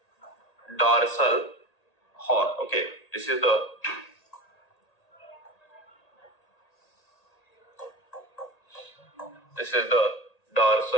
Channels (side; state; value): right; late; 1.8 ms